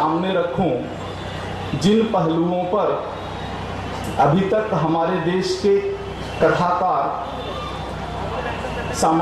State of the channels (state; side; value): identical; both; correlation 1.00